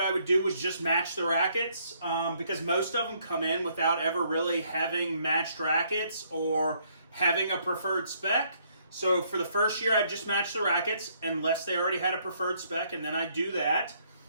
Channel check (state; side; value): inverted; both; correlation -0.68